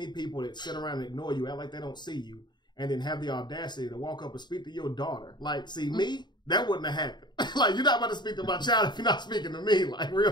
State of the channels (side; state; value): right; late; 0.21 ms